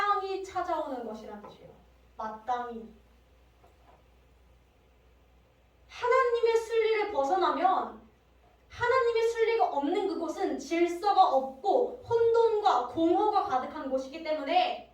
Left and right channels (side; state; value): both; identical; correlation 1.00